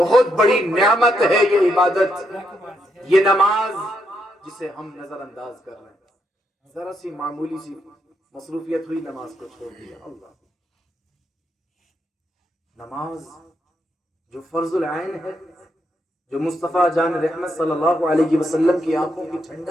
بڑی نعمت ہے یہ عبادت، یہ نماز جسے ہم نظر انداز کر رہے ہیں. ذرا سی معمولی سی مصروفیت ہوئی، نماز کو چھوڑ دیا. اللہ، نماز جو فرض العین ہے، جو مصطفیٰ جان رحمت صلی اللہ علیہ وسلم کی آنکھوں کی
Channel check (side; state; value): both; normal; correlation 0.79